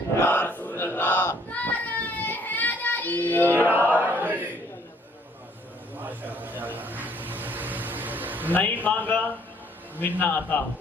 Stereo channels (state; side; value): normal; both; correlation 0.63